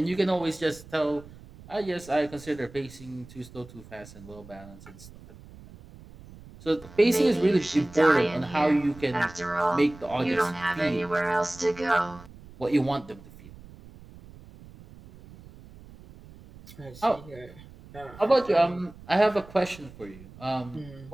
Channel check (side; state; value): right; noise; rumble, 20 dB below the sound